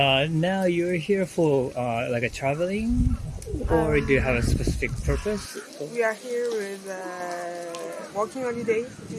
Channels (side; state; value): both; identical; correlation 1.00